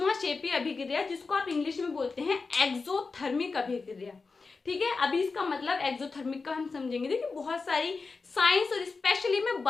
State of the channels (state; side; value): quieter; right; 4.3 dB